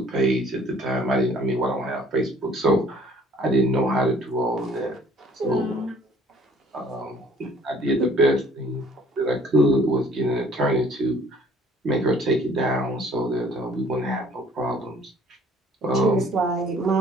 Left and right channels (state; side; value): normal; both; correlation 0.56